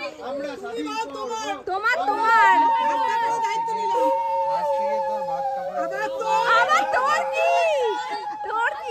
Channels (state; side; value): identical; both; correlation 1.00